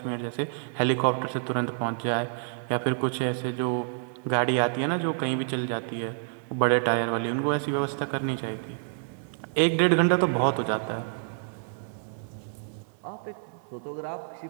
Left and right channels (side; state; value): left; silent; 59 dB below the other